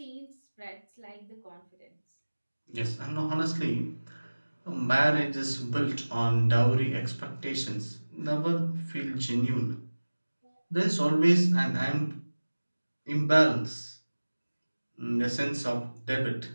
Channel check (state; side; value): inverted; both; correlation -1.00